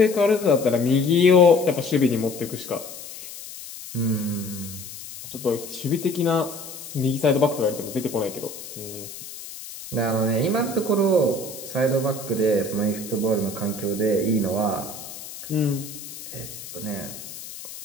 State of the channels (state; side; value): noise; left; hiss, 13 dB below the sound